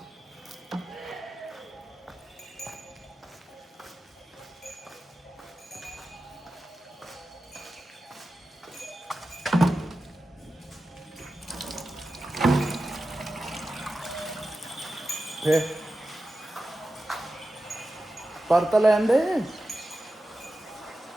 पर तो लैन दे।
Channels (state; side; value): normal; both; correlation 0.93